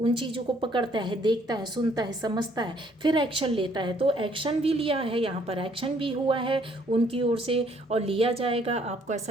चीज़ों को पकड़ता है, देखता है, सुनता है, समझता है, फिर एक्शन लेता है। तो एक्शन भी लिया है, यहाँ पर एक्शन भी हुआ है उनकी ओर से और लिया जाएगा। आपको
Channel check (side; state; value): both; normal; correlation 0.65